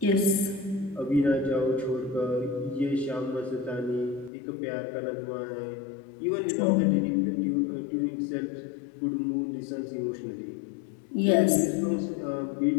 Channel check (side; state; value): right; drops out; at 4.3 s